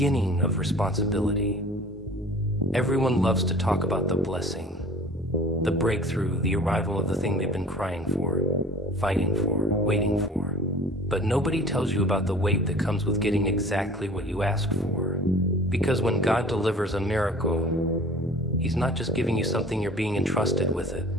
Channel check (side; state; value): both; normal; correlation 0.44